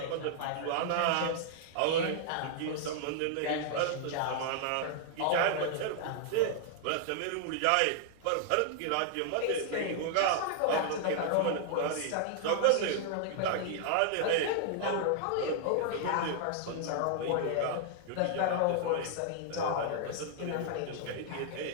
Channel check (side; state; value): both; different; correlation -0.01